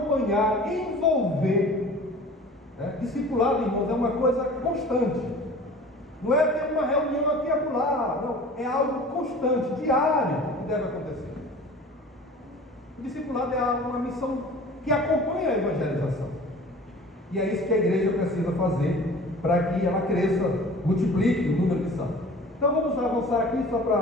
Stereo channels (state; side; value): normal; both; correlation 0.43